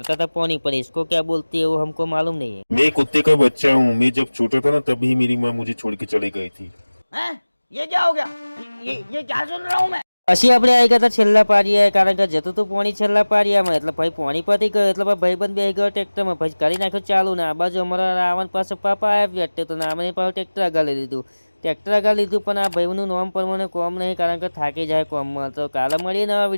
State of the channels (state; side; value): inverted; both; correlation -1.00